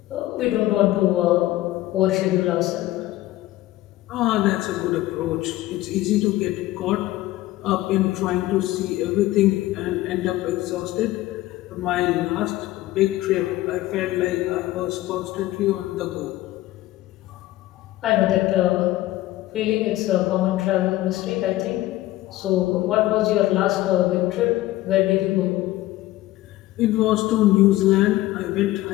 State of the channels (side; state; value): right; quieter; 16.4 dB